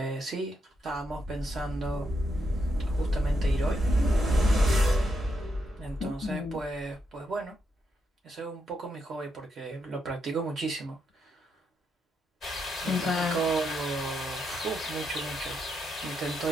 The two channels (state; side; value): normal; both; correlation 0.81